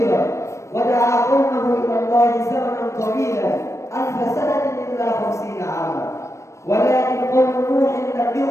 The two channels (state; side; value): late; right; 0.14 ms